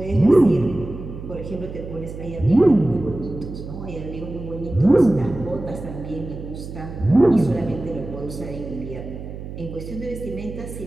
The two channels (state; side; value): noise; right; hum, 10 dB below the sound